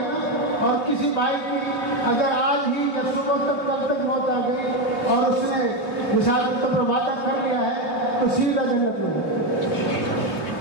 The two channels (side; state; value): right; late; 3.2 ms